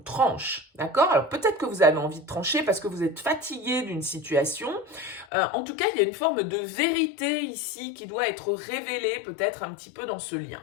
D'accord? Alors, peut-être que vous avez envie de trancher parce que vous êtes fatigué d'une situation. En tout cas, il y a une forme de vérité ici qui doit être révélée, peut-être un petit peu dans ce lien.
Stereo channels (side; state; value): right; drops out; at 5.2 s